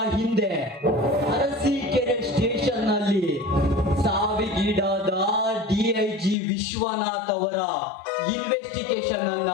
ಹಿಂದೆ ಅರಸೀಕೆರೆ ಸ್ಟೇಷನ್ ನಲ್ಲಿ ಸಾವಿಗೀಡಾದ DIG ವಿಶ್ವನಾಥ್ ಅವರ ಇನ್ವೆಸ್ಟಿಗೇಷನ್ ಅನ್ನ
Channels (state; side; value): drops out; right; at 6.4 s